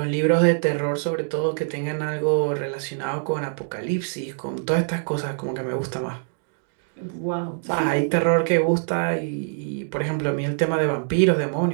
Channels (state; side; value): silent; left; digital silence